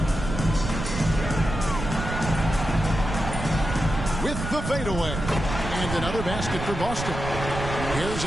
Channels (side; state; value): right; noise; rumble, 6 dB below the sound